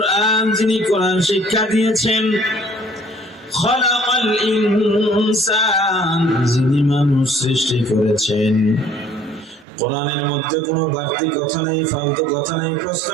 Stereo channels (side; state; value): left; drops out; at 9.7 s